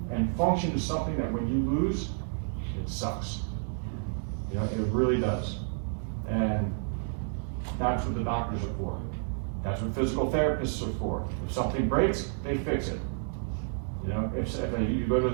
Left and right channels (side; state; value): left; silent; digital silence